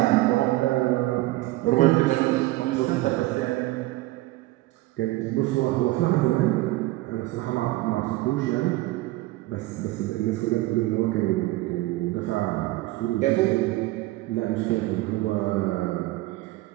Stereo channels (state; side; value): quieter; left; 18.8 dB